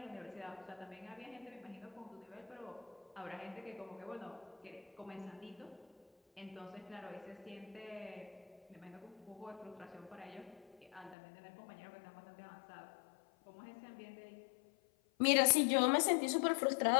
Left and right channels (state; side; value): drops out; right; at 11.2 s